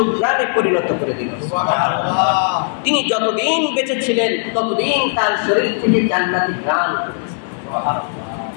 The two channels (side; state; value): right; silent; digital silence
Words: পরিণত করে দিল। সুবহানাল্লাহ। তিনি যতদিন বেঁচে ছিলেন ততদিন তার শরীর থেকে জান্নাতি ঘ্রাণ করেছে। সুবহানাল্লাহ।